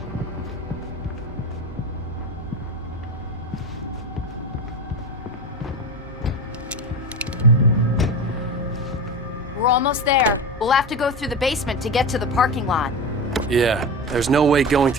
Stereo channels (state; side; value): normal; both; correlation 0.25